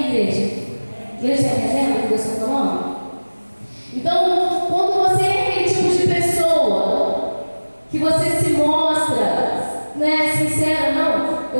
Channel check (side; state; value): both; inverted; correlation -1.00